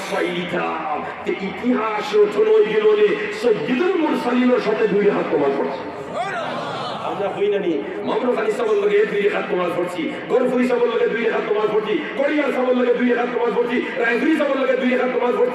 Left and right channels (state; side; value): identical; both; correlation 1.00